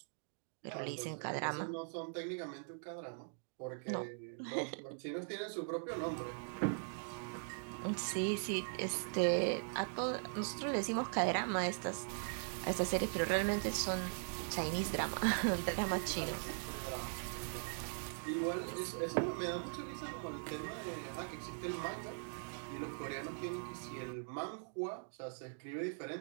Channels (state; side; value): silent; left; digital silence